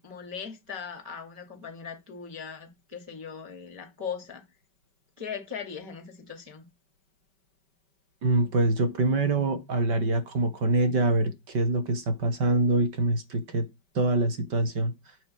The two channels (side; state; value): left; late; 5.2 ms